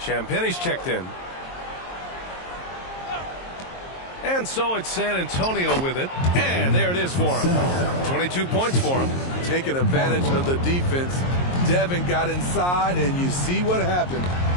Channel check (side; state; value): right; late; 22 ms